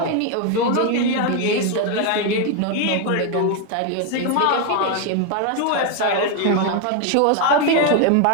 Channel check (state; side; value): different; both; correlation 0.01